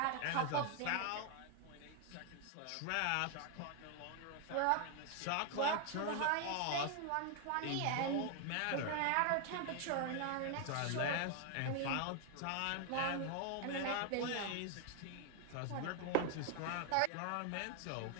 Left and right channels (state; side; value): different; both; correlation 0.00